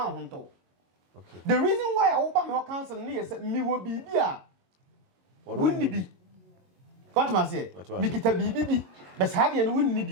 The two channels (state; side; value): late; left; 22 ms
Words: ho nto okay the reason why I open my counsel ne yes mi wo bibia wonni bi what ma say mi kita bibi bi bes ha de no wonni